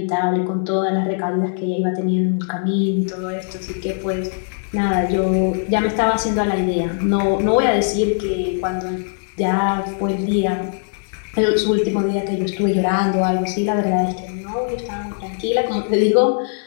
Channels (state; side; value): silent; right; digital silence